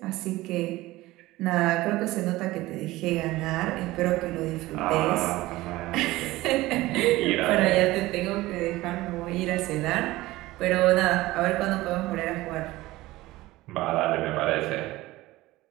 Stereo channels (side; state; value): left; quieter; 18.3 dB